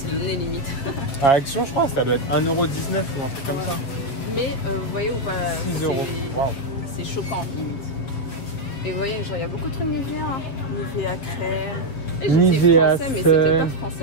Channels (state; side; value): late; right; 7.8 ms